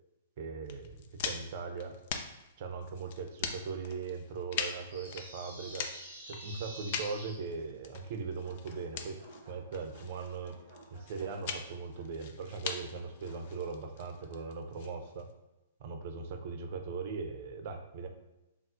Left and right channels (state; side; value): inverted; both; correlation -0.41